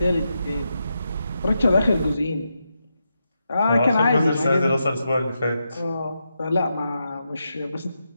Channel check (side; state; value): both; inverted; correlation -0.85